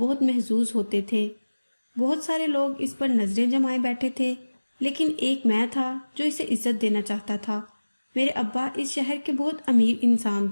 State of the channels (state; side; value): inverted; both; correlation -1.00